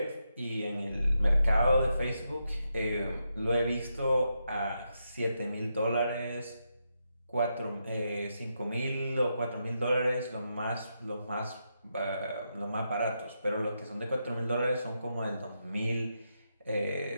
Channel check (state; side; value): inverted; both; correlation -0.84